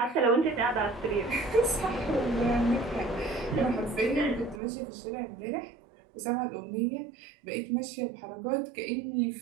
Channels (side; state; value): left; drops out; at 4.6 s